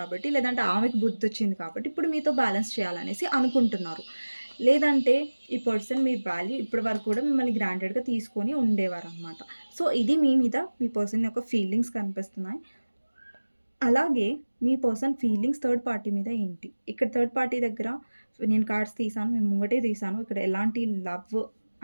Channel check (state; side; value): inverted; both; correlation -1.00